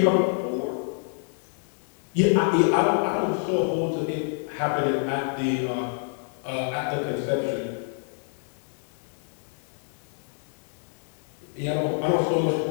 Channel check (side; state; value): right; silent; digital silence